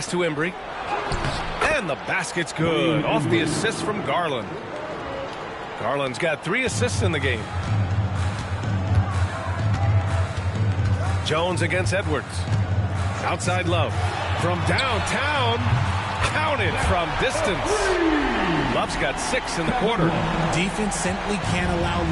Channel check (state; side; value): identical; both; correlation 1.00